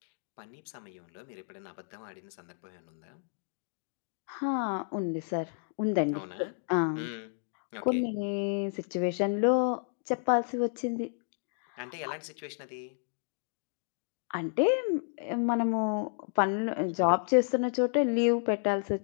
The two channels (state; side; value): silent; right; digital silence